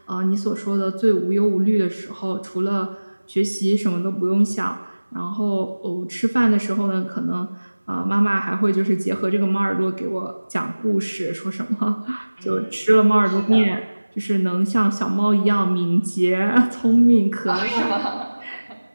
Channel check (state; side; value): inverted; both; correlation -1.00